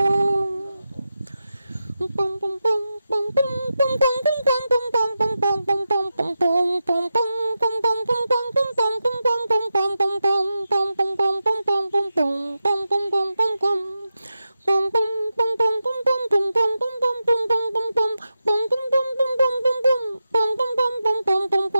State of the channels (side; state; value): both; inverted; correlation -0.90